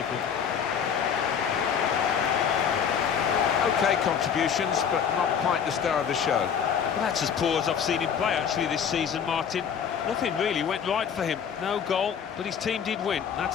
OK contributions, but not quite the star of the show. Well, that's as poor as I've seen him play, actually, this season, Martin. Nothing really went right for him. No goal, but his team did win.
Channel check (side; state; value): right; quieter; 7.6 dB